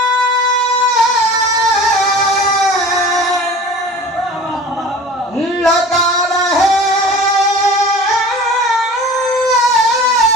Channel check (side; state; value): both; normal; correlation 0.41